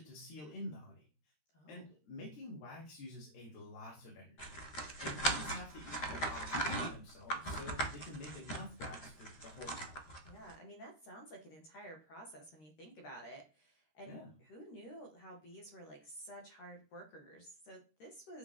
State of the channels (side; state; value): right; late; 13 ms